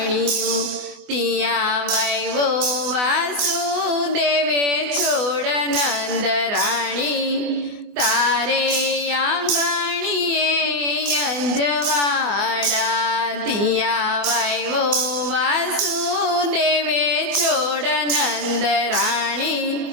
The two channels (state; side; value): late; left; 24 ms